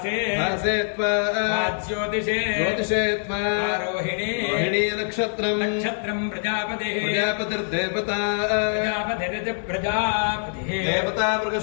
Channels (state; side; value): silent; right; digital silence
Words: భాసేత్వా జ్యోతిషే జ్యోతిషేత్వా రోహిణీ రోహిణీ నక్షత్రం నక్షత్రం ప్రజాపతి ప్రజాపతిర్దేవతా ప్రజాపతిరితి ప్రజాపతి దేవతా